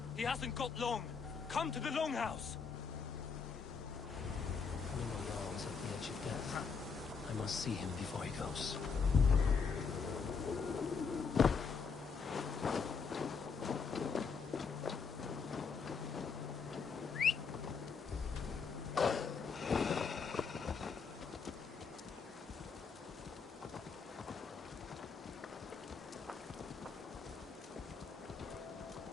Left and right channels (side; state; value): right; quieter; 5.5 dB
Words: He hasn't got long! Come to the Longhouse! Jarl is at the edge of death. I must see him before he goes.